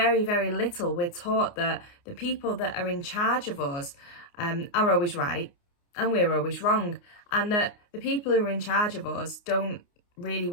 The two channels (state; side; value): late; right; 29 ms